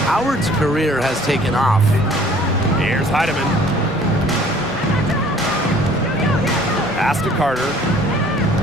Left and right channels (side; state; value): both; normal; correlation 0.54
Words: Howard's career has taken off. Here's Heidemann. Pass to Carter.